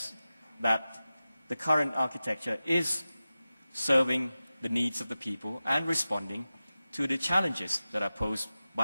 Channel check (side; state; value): both; inverted; correlation -0.95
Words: that the current architecture is serving the needs of the people and responding to the challenges that are posed